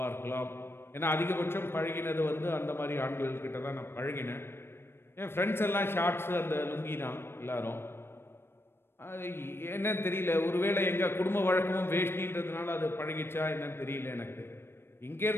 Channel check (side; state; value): right; late; 0.11 ms